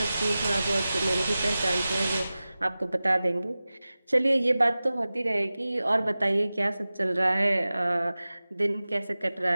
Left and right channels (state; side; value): inverted; both; correlation -0.96